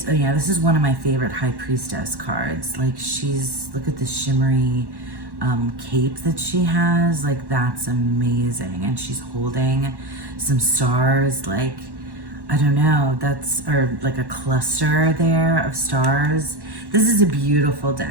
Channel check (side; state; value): left; late; 1.1 ms